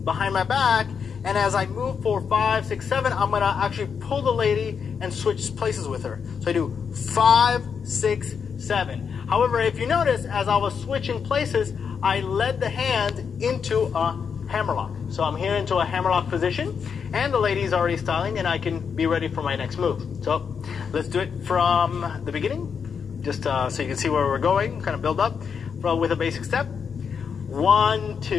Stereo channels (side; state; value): right; quieter; 6.5 dB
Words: behind my back, and as I move for 5, 6, 7, I'm going to actually pull the lady and switch places with her. So I do 5, 6, 7. However, if you notice, as I was switching places, I led the hand into a hammerlock. So I'm here into a hammerlock position, and the lady's already styling, and I can be ready for my next move. So let's do it from the beginning, just so you can see where we're going, kind of build up with a basic step. 1,